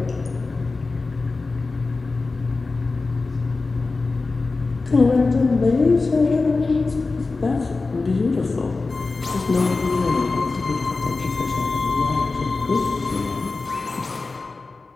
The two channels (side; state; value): right; quieter; 3.8 dB